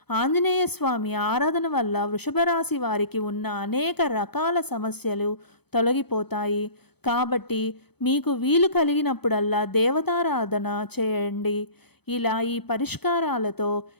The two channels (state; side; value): late; right; 0.97 ms